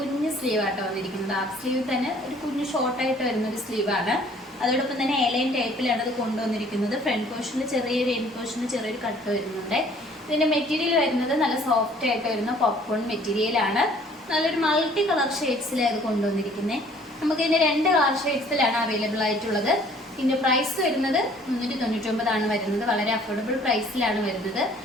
സ്ലീവ് ആട്ടോ വന്നിരിക്കുന്നത്. ഹാഫ് സ്ലീവ് തന്നെ ഒരു കുഞ്ഞു ഷോർട്ടായിട്ട് വരുന്ന ഒരു സ്ലീവാണ്. അതോടൊപ്പം തന്നെ എയർലൈൻ ടൈപ്പിലാണ് ഇത് കൊണ്ടുവന്നിരിക്കുന്നത്. ഫ്രണ്ട് പോർഷനിൽ ചെറിയൊരു എൻഡ് പോർഷനിൽ ചെറിയൊരു കട്ട് വരുന്നുണ്ട്. ഇതിന്റെ മെറ്റീരിയൽ വരുന്നത് നല്ല സോഫ്റ്റ് ആയിട്ട് വരുന്ന പോപ്കോൺ മെറ്റീരിയലാണ്. നല്ലൊരു മൾട്ടി കളർ ഷെയ്ഡ്സിലാണ് ഇത് കൊണ്ടുവന്നിരിക്കുന്നത്. നമുക്ക് ഇതിന്റെ 2 കളർ ഷെയ്ഡ്സിലാണ് അവൈലബിൾ ആയിട്ടുള്ളത്. ഇതിന്റെ പ്രൈസ് വരുന്നത് 399 ആണ് വരുന്നത്. വളരെ അഫോർഡബിൾ പ്രൈസിലാണ് വരുന്നത്.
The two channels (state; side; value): normal; both; correlation 0.56